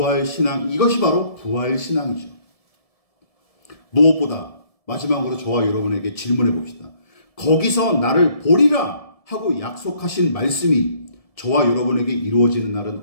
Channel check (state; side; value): late; right; 1.7 ms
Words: 이것이 바로 부활신앙이죠. 무엇보다 마지막으로 저와 여러분에게 질문해 봅시다. 거기서 나를 보리라 하고 약속하신 말씀이 저와 여러분에게 이루어지는 날은